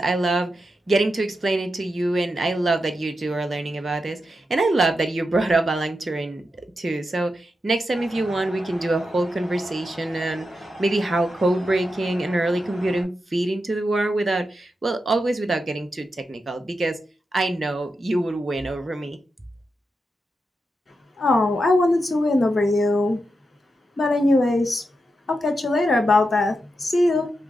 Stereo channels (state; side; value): normal; both; correlation 0.87